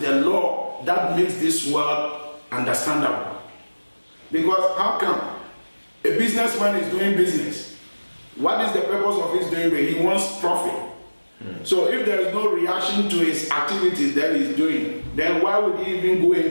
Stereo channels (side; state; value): both; inverted; correlation -1.00